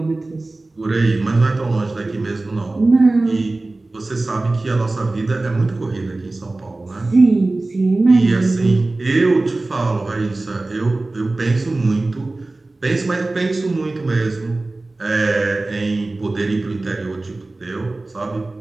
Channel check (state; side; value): quieter; left; 3.1 dB